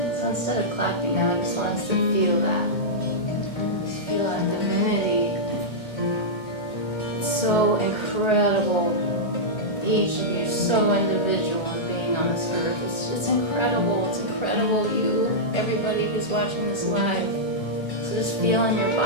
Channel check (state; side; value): late; right; 2.2 ms